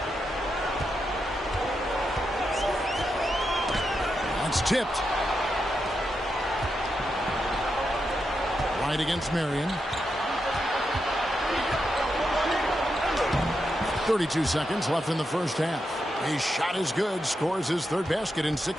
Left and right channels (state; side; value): normal; both; correlation 0.85